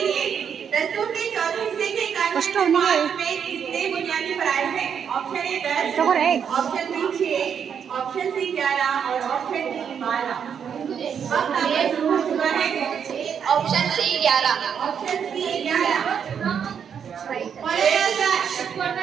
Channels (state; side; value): quieter; left; 7.6 dB